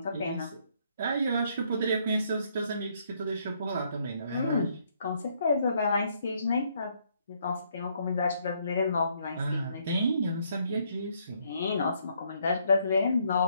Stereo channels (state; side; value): inverted; both; correlation -0.70